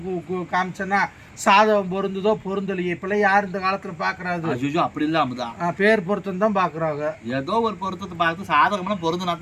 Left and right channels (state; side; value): identical; both; correlation 1.00